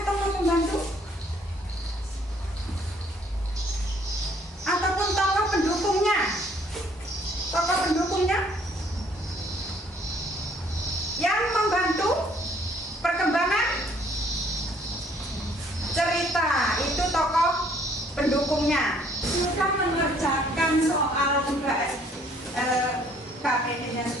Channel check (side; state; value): both; normal; correlation 0.62